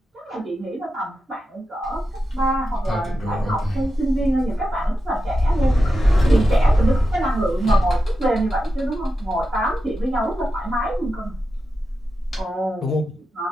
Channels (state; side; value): normal; both; correlation 0.90